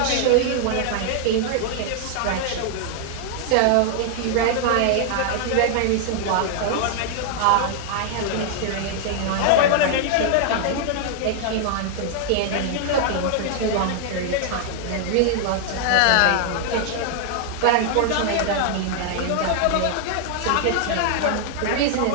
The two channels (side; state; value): both; different; correlation 0.00